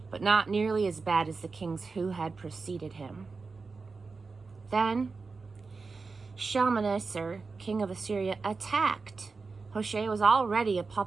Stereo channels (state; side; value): quieter; left; 4.4 dB